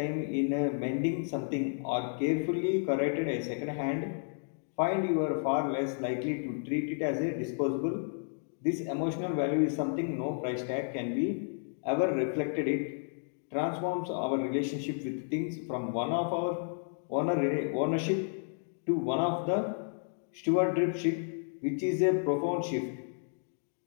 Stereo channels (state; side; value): silent; right; digital silence